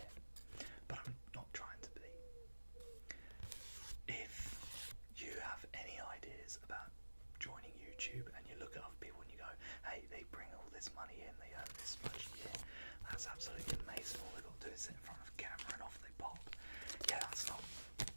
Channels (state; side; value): inverted; both; correlation -1.00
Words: it, but I'm not trying to be. If you have any ideas about joining YouTube and you look at other people and you go, hey, they bring all this money in, they earn this much a year, that's absolutely amazing, all they've got to do is sit in front of a camera and off they pop. Yeah, that's not